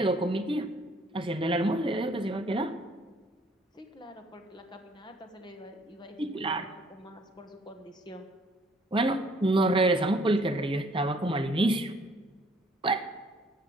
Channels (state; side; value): normal; both; correlation 0.61